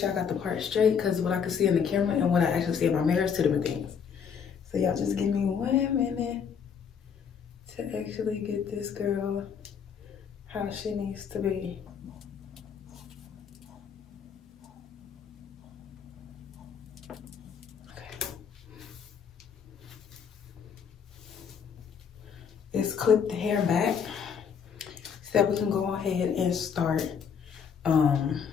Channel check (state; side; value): quieter; right; 7.0 dB